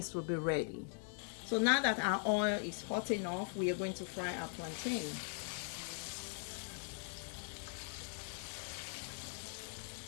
will be ready. So now that our oil is hot enough, we are going to fry our plantain.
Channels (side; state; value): right; silent; 51 dB below the other